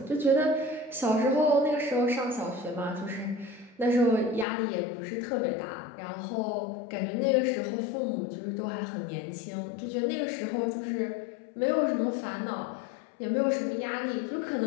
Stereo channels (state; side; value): drops out; right; at 4.5 s